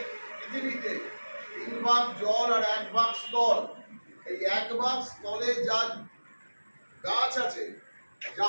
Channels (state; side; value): inverted; both; correlation -1.00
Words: পৃথিবীতে ভাগ জল আর 1 ভাগ স্থল। এই 1 ভাগ স্থলে যা গাছ আছে, যা